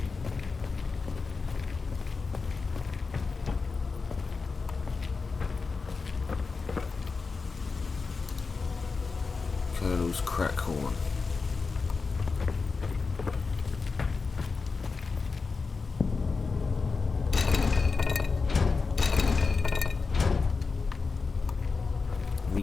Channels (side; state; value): right; quieter; 4.5 dB